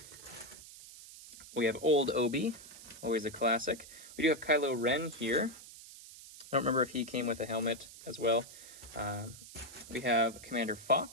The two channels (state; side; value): noise; right; hiss, 16 dB below the sound